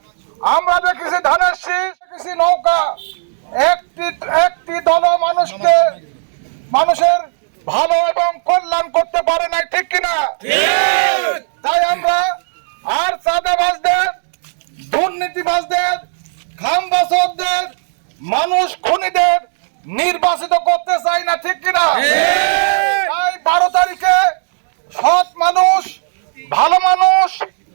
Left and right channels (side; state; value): left; silent; digital silence